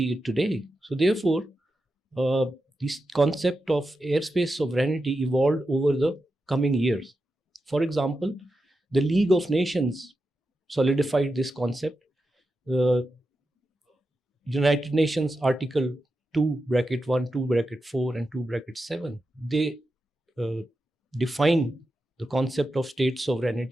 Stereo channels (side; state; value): both; normal; correlation 0.89